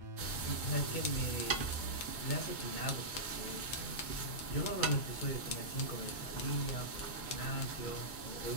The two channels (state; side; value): late; right; 2.2 ms